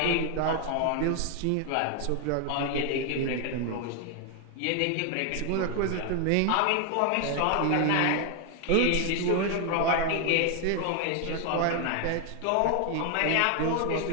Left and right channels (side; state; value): both; different; correlation 0.00